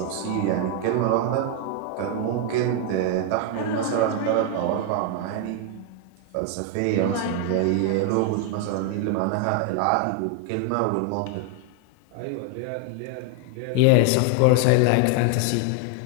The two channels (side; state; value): both; different; correlation 0.01